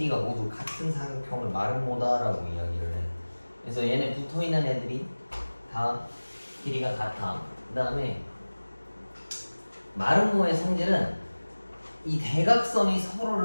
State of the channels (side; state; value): both; inverted; correlation -1.00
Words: 모두 같은 사각형을 마름모다라고 이야기를 해. 그래서 얘네 붙어있는 애들이 다 길이가 같아. 그 다음에 마름모의 성질은 이 대각선이